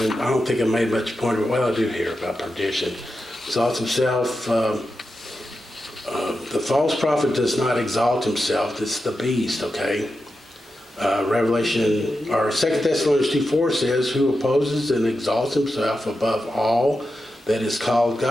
I don't think I made much point of it. Well, I do hear about perdition. Exalts himself. The false prophet does not exalt himself. It's the beast, okay? Revelation, or 2 Thessalonians 2:4 says, who opposes and exalts himself above all that is called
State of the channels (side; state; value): both; normal; correlation 0.89